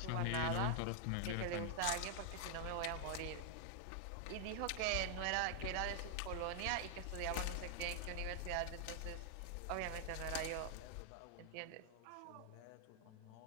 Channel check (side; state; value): both; different; correlation 0.00